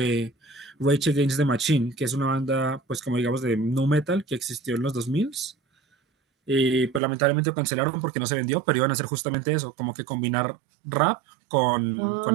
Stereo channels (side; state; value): left; drops out; at 7.0 s